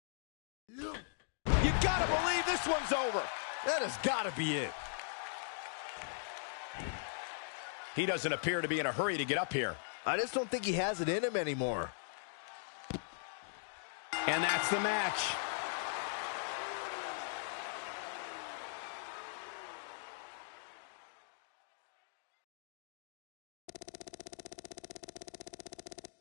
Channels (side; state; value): right; silent; digital silence